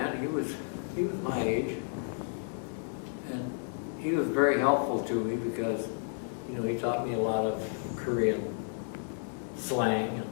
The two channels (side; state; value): right; silent; digital silence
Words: He was my age. And he was very helpful to me because, he taught me a lot of Korean slang,